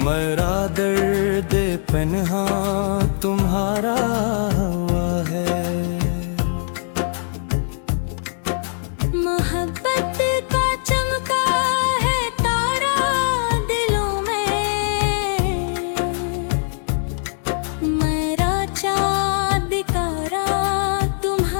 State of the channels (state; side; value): silent; right; digital silence